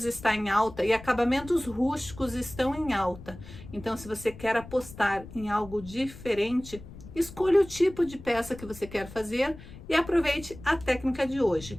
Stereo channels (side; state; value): left; noise; rumble, 16 dB below the sound